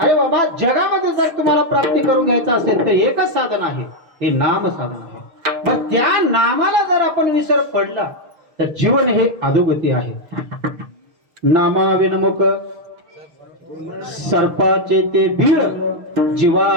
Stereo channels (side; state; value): left; late; 6.4 ms